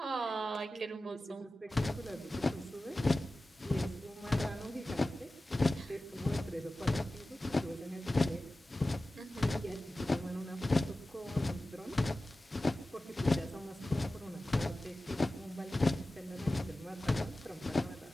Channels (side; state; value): both; normal; correlation 0.95